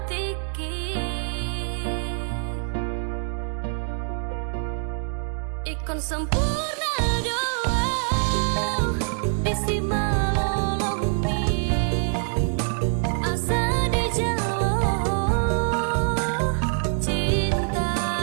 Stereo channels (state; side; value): silent; left; 58 dB below the other